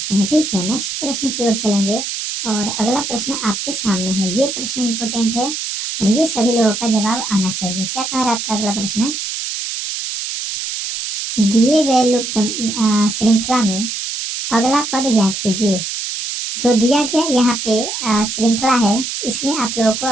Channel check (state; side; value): noise; right; hiss, 4 dB below the sound